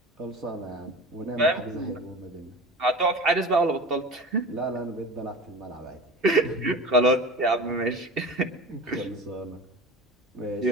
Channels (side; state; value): both; normal; correlation 0.34